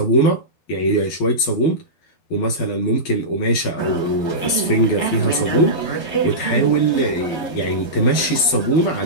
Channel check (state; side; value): late; right; 12 ms